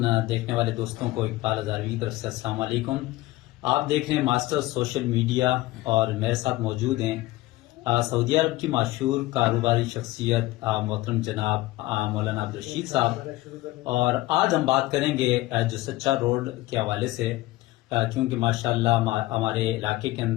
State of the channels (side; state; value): right; quieter; 18.0 dB